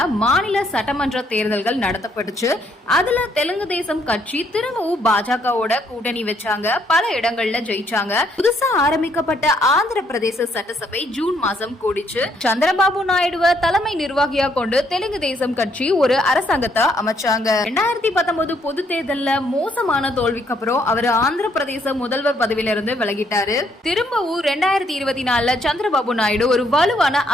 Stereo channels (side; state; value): both; normal; correlation 0.70